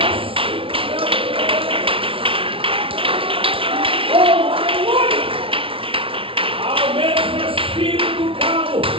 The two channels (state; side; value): late; left; 0.26 ms